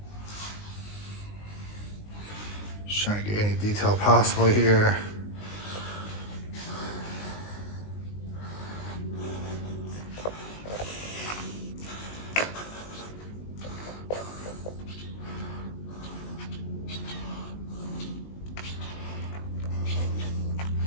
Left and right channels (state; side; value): late; right; 19 ms